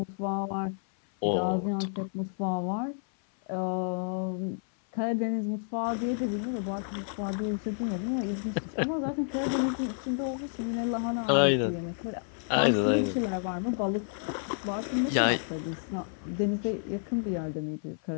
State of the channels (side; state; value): right; silent; 58 dB below the other